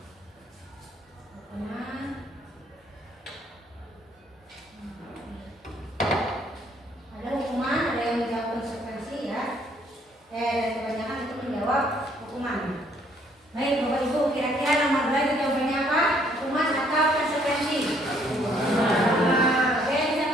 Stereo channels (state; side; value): normal; both; correlation 0.65